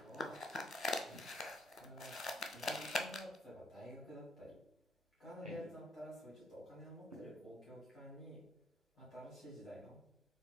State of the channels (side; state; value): both; normal; correlation 0.71